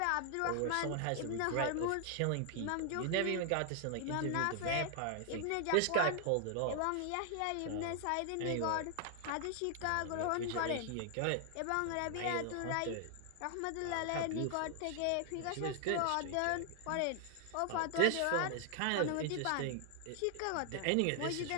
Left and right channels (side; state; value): both; different; correlation 0.00